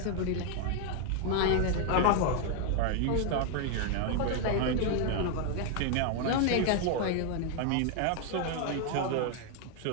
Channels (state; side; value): different; both; correlation 0.00